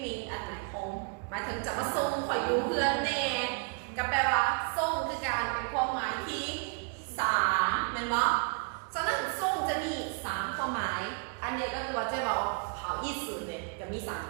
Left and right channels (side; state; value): left; quieter; 37.3 dB